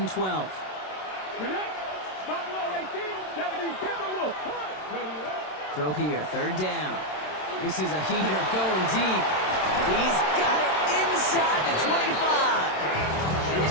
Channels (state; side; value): late; right; 27 ms